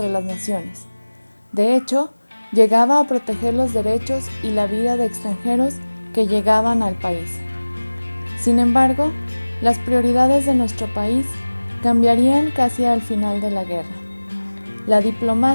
las naciones. De hecho, llegaba a proteger los derechos y la vida de extranjeros que llegaban al país. Sin embargo, las prioridades de nuestro país cambiarían casi al final de la guerra. La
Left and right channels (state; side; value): inverted; both; correlation -1.00